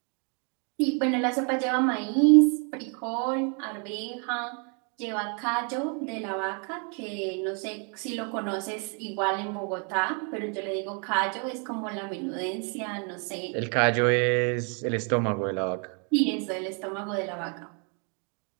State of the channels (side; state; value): left; quieter; 38.0 dB